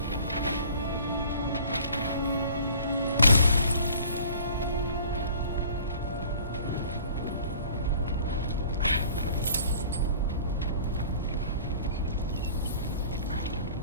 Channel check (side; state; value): both; inverted; correlation -0.48